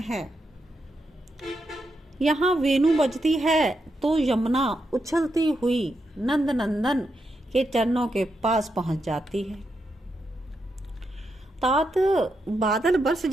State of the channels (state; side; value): normal; both; correlation 0.84